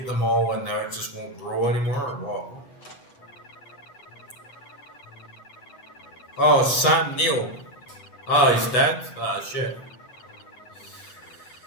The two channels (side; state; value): right; late; 7.9 ms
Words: them all and now it just won't grow anymore or what. Oh, Sam Neill. Oh, he's dead? Ah, shit.